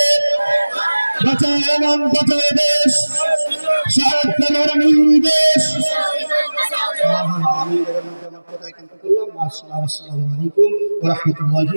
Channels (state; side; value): inverted; both; correlation -1.00